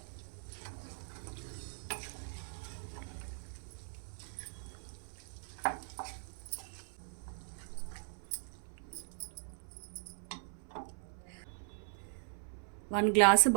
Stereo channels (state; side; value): silent; left; 52 dB below the other